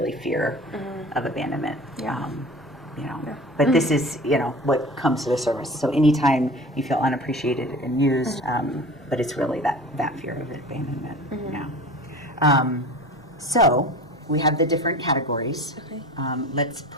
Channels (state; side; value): normal; both; correlation 0.38